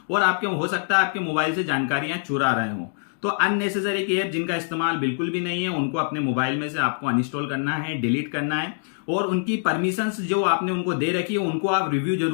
और आपके हो सकता है आपके मोबाइल से जानकारियां चुरा रहे हो। तो अननेसेसरी ऐप जिनका इस्तेमाल बिल्कुल भी नहीं है उनको अपने मोबाइल में से आपको अनइंस्टॉल करना है, डिलीट करना है और उनकी परमिशंस जो आपने उनको दे रखी है उनको आप रिव्यू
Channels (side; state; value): right; silent; digital silence